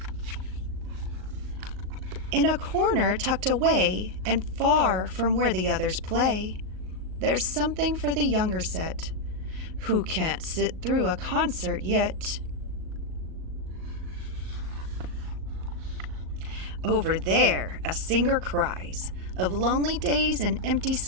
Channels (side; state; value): left; late; 38 ms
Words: In a corner tucked away and far from where the others play, there's something for the younger set who can't sit through a concert yet. Over there, a singer cries of lonely days and empty